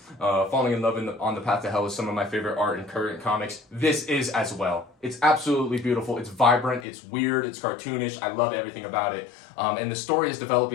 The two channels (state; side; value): drops out; right; at 6.9 s